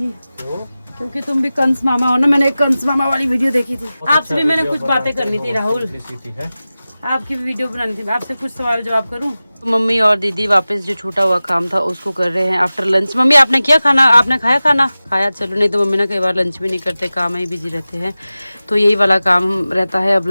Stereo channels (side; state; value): both; inverted; correlation -0.96